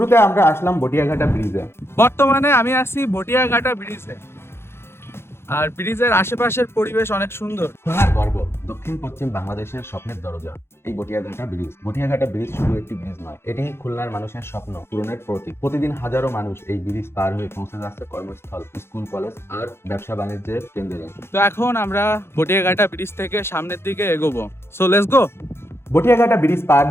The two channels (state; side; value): late; right; 0.12 ms